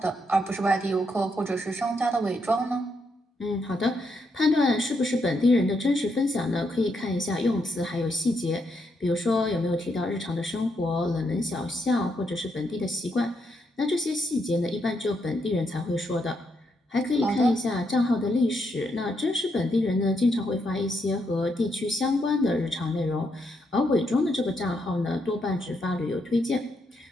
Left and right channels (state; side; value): normal; both; correlation 0.79